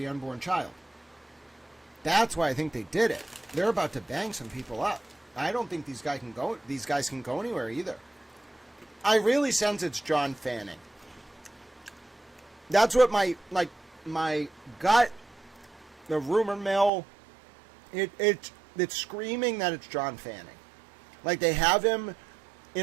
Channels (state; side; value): drops out; left; at 16.9 s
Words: unborn child. That's why I think they did it. They're about to bang some people up. I don't think these guys can go anywhere either. I really sense it's John Fanning. That's what my gut, the rumor mill, it's screaming that it's John Fanning. Like, they have him